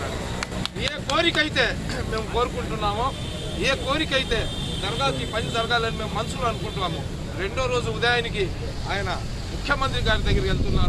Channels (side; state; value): both; identical; correlation 1.00